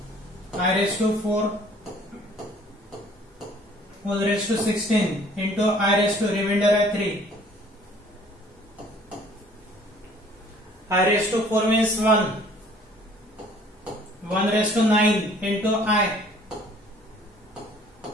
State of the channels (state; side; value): normal; both; correlation 0.55